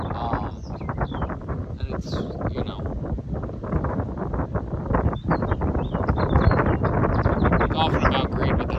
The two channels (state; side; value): identical; both; correlation 1.00